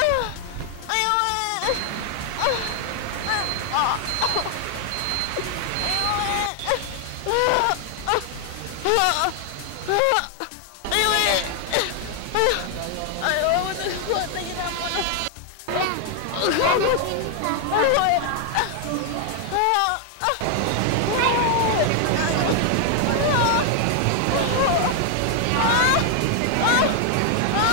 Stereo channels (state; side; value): different; both; correlation 0.00